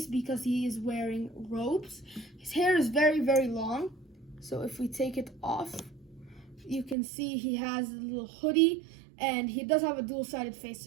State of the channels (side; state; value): left; drops out; at 7.0 s